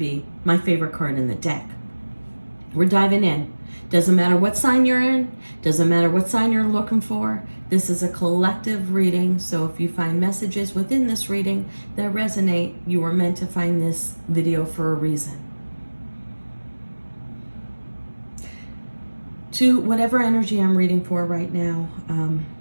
my favorite card in the deck. We're diving in. Doesn't matter what sign you're in, doesn't matter what sign you're looking for. This is a collective reading, so if you find messages within this reading that resonate, you were meant to find this video for a reason. To whatever energy I'm reading for right now,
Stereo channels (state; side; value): inverted; both; correlation -1.00